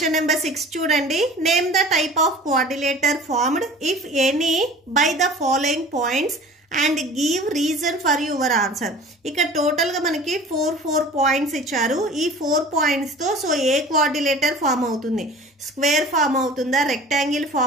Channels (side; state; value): both; normal; correlation 0.43